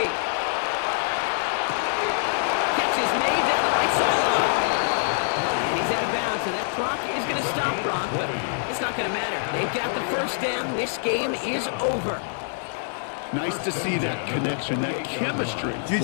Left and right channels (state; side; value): silent; right; digital silence